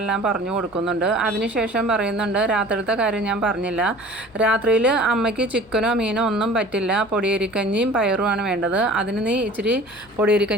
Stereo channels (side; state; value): both; normal; correlation 0.45